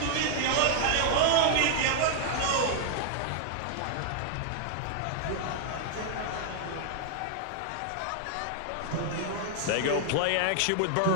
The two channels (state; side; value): different; both; correlation -0.01